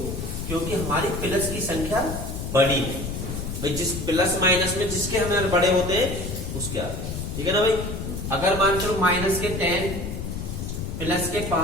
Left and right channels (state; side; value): noise; left; rumble, 5 dB below the sound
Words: क्योंकि हमारी प्लस की संख्या बड़ी है भाई। जिस प्लस माइनस में जिसके हमें बड़े होते हैं उसके आगे, ठीक है ना भाई। अगर मान लो माइनस के 10 प्लस के